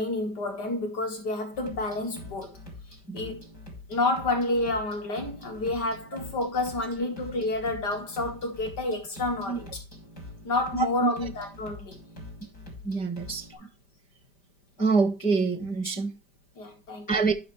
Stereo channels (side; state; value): right; late; 5.1 ms